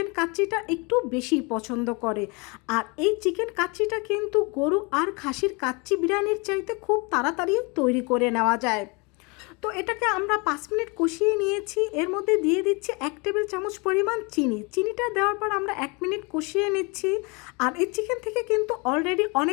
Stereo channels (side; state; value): right; quieter; 29.6 dB